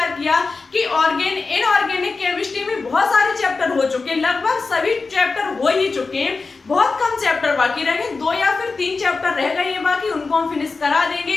किया कि इनऑर्गेनिक केमिस्ट्री में बहुत सारे चैप्टर हो चुके हैं, लगभग सभी चैप्टर हो ही चुके हैं, बहुत कम चैप्टर बाकी रह गए, 2 या फिर 3 चैप्टर रह गए हैं बाकी, उनको हम फिनिश करा देंगे।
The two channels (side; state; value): right; quieter; 4.1 dB